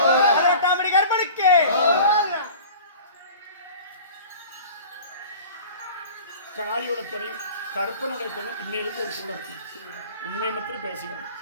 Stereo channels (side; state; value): both; inverted; correlation -0.41